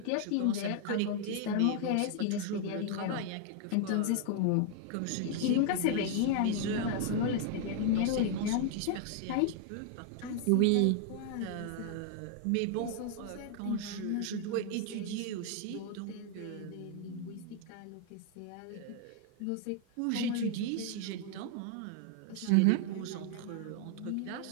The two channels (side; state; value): both; different; correlation 0.00